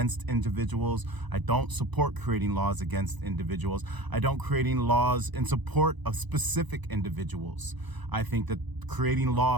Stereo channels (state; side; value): late; left; 1.0 ms